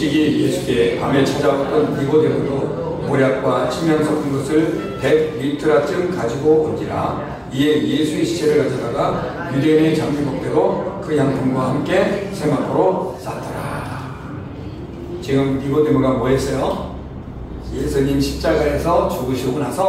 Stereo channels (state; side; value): identical; both; correlation 1.00